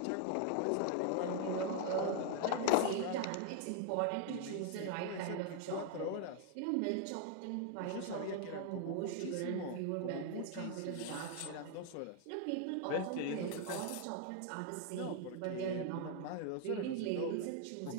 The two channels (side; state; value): both; different; correlation 0.00